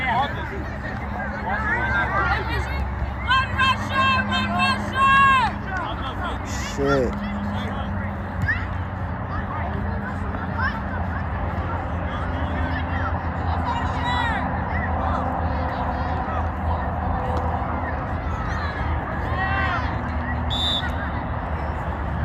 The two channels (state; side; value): identical; both; correlation 1.00